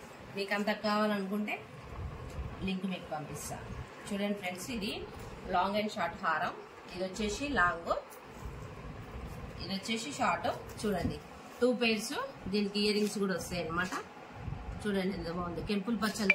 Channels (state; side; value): identical; both; correlation 1.00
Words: మీకు అంత కావాలనుకుంటే లింక్ మీకు పంపిస్తా. చూడండి ఫ్రెండ్స్, ఇది లాంగ్ అండ్ షార్ట్ హారం. ఇది వచ్చేసి లాంగ్, ఇది వచ్చేసి షార్ట్. చూడండి 2 pairs. దీనికి ఇయర్ రింగ్స్ కూడా వస్తాయి అనమాట. చూడండి ఎంత బాగుంది, కెంపుల్